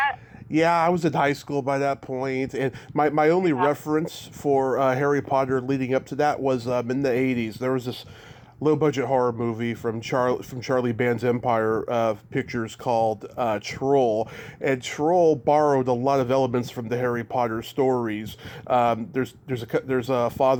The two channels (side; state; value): both; identical; correlation 1.00